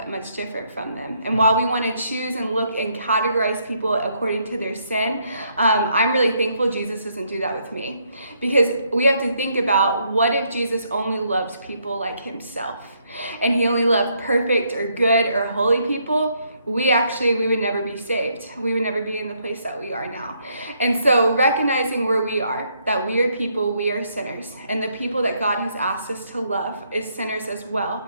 much different from them. And while we want to choose and look and categorize people according to their sin, I'm really thankful Jesus doesn't do that with me. Because we have to think about, what if Jesus only loves people like himself? And he only loved perfect or good or holy people? We would never be saved. We would never be in the place that we are now. And so recognizing where we are, that we are people, we are sinners, and the people that God has asked us to love is sinners as well.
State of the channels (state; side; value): inverted; both; correlation -0.73